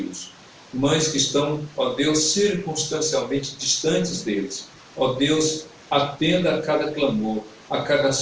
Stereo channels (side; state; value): both; identical; correlation 1.00